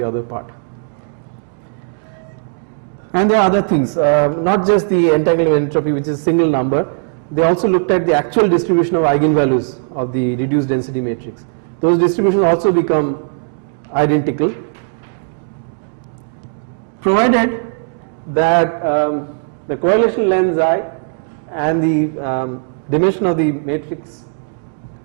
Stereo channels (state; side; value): silent; left; 68 dB below the other